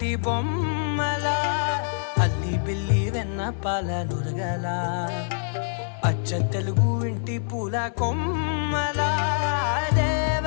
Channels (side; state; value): right; silent; 57 dB below the other